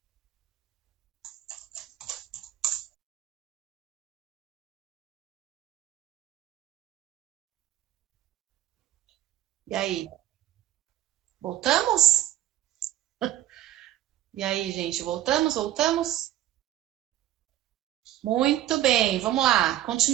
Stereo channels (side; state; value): left; quieter; 13.1 dB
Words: E aí? Voltamos? E aí, gente, voltamos? Voltamos? Muito bem, vamos lá.